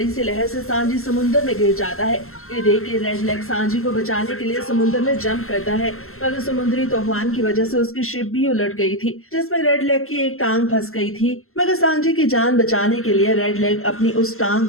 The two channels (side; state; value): right; late; 0.62 ms